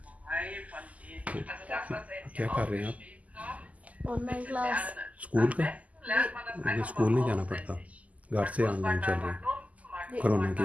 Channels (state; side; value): late; left; 0.073 ms